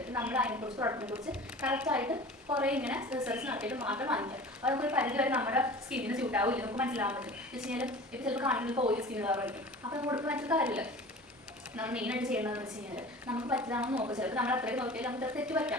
നമ്മൾ അതിനെക്കുറിച്ച് പ്രൊഡക്റ്റിനെ കുറിച്ച് കറക്റ്റായിട്ട് കുറേ ഇങ്ങനെ റിസർച്ച് നടത്തിയിട്ട് മാത്രം വാങ്ങിക്കാം. അപ്പോൾ നമുക്കൊരു പരിധി വരെ നമ്മുടെ സ്കിന്നിന് സ്യൂട്ടാവില്ല, നമുക്ക് മനസ്സിലാവാൻ പറ്റും. എന്ന് വെച്ച് കഴിഞ്ഞാൽ ഇപ്പോൾ ചിലപ്പോൾ കാണിക്കുന്നത് ഓയിൽ സ്കിൻ കളറായിരിക്കും. അപ്പോൾ നമുക്ക് കൊടുക്കാൻ പറ്റുന്ന കാര്യമില്ല. നമ്മൾ മെയിനായിട്ട് ചെയ്യേണ്ടതെന്ന് വെച്ച് കഴിഞ്ഞാൽ നമുക്ക് പറ്റിയതാണെന്ന് നോക്കുക. ചിലപ്പോൾ നമ്മൾ അത്രയും നോക്കിയാൽ നമുക്ക് തെറ്റ് പറ്റാം,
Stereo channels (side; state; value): both; normal; correlation 0.39